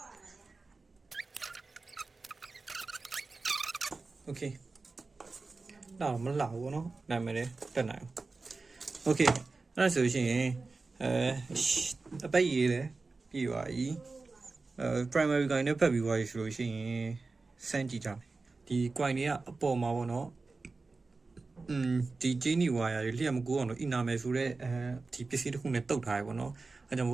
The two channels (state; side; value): quieter; left; 3.8 dB